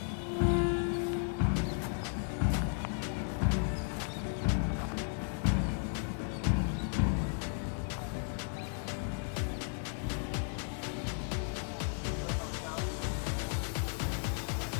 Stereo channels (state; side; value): silent; right; 55 dB below the other